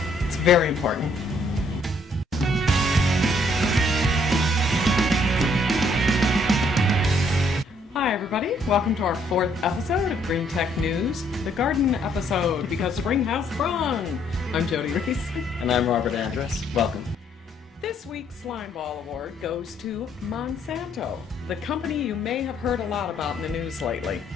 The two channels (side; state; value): both; normal; correlation 0.67